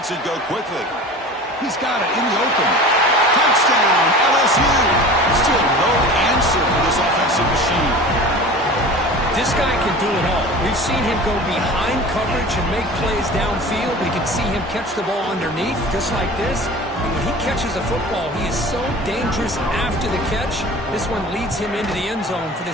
it go quickly. He's got it in the open. Touchdown, LSU. Still no answer for this offensive machine. This guy can do it all. We've seen him go behind coverage and make plays downfield. We can see him catch the ball underneath, just like this. And when he catches a football, he is so dangerous after the catch. This one leads him into the end zone for the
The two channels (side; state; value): both; normal; correlation 0.38